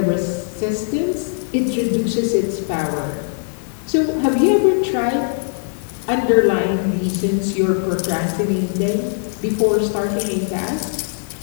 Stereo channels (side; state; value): right; silent; digital silence